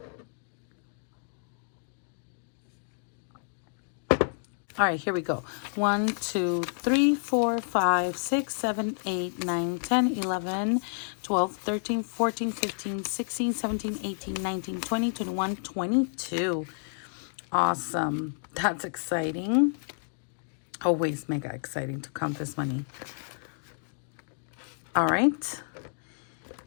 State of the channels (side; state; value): right; silent; digital silence